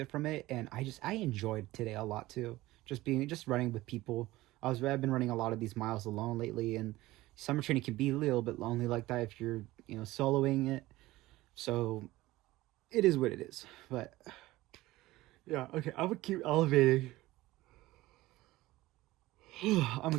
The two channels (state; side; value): quieter; left; 17.9 dB